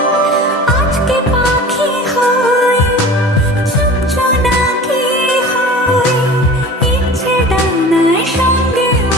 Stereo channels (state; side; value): normal; both; correlation 0.39